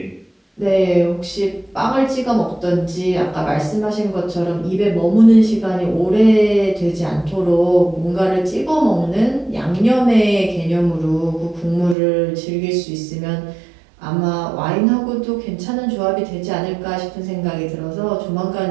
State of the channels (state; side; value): drops out; left; at 12.0 s